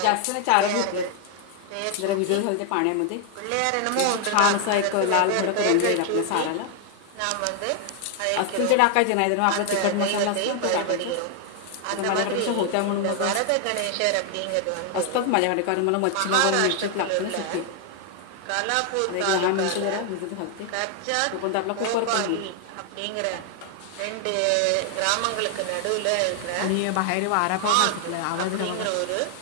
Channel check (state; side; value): different; both; correlation 0.00